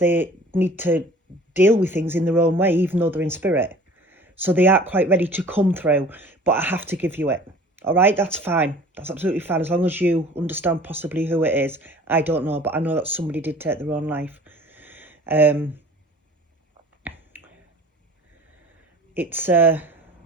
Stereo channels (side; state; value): both; normal; correlation 0.46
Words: need to deal with things in their own way, even though they're in spirit. So they aren't quite ready to come through, but I have to give you it. All right, that's fine. That's absolutely fine, as long as you understand possibly who it is. I don't know, but I know that somebody did take their own life. It's